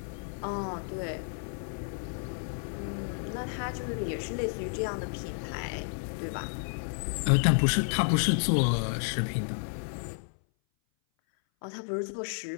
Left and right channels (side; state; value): right; silent; 57 dB below the other